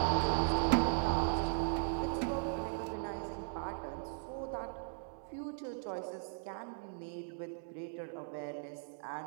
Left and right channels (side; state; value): left; silent; digital silence